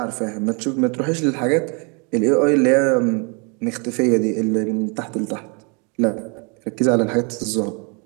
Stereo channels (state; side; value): quieter; left; 34.1 dB